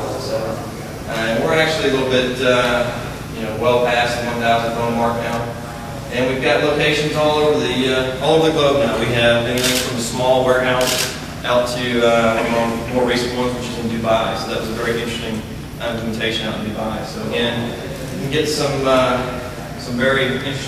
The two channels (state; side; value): identical; both; correlation 1.00